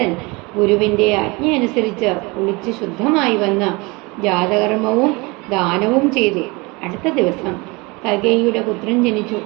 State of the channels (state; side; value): quieter; left; 25.8 dB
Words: ഗുരുവിന്റെ ആജ്ഞയനുസരിച്ച് കുളിച്ച് ശുദ്ധമായി വന്ന് ജാതകർമ്മവും ദാനവും ചെയ്തു. അടുത്ത ദിവസം കൈകേയിയുടെ പുത്രൻ ജനിച്ചു.